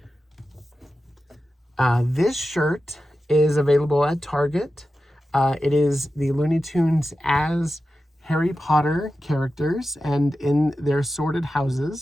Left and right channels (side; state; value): both; normal; correlation 0.92